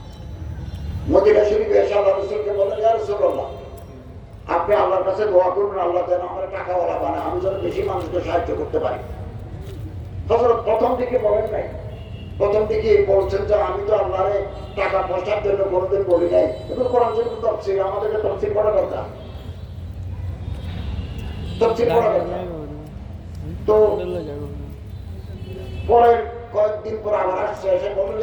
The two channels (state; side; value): identical; both; correlation 1.00